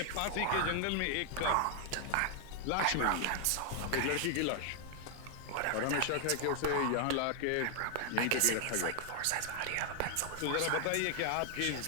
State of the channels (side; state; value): both; different; correlation 0.00